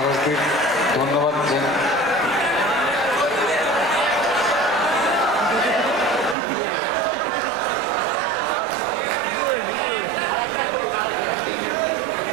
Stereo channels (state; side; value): drops out; left; at 6.4 s